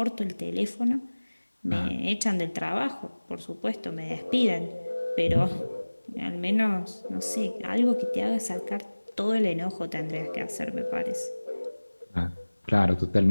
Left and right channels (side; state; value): both; inverted; correlation -1.00